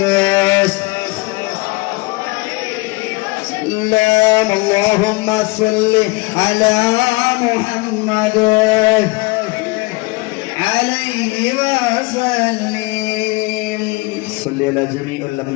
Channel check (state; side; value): quieter; right; 25.2 dB